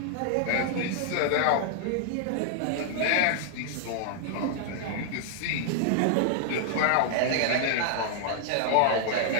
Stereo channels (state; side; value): different; both; correlation 0.00